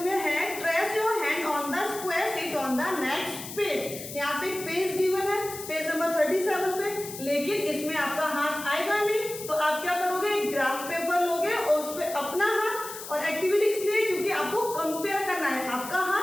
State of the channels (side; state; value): left; noise; hiss, 11 dB below the sound